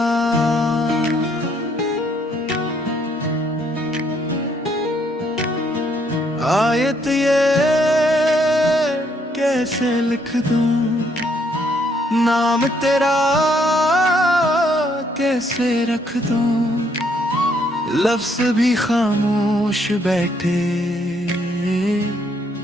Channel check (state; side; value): normal; both; correlation 0.70